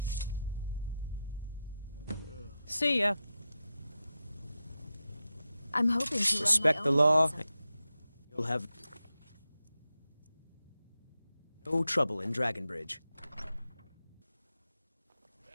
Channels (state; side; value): inverted; both; correlation -0.90